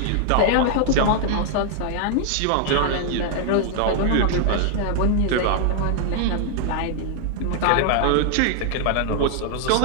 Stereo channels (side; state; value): both; different; correlation 0.00